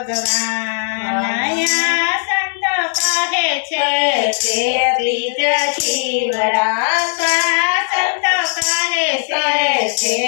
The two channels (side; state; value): right; silent; digital silence